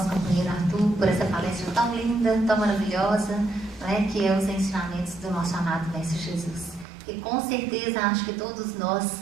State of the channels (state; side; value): drops out; left; at 6.9 s